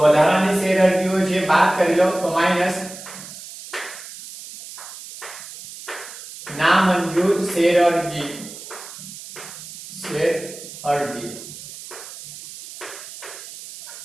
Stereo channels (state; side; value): noise; right; hiss, 14 dB below the sound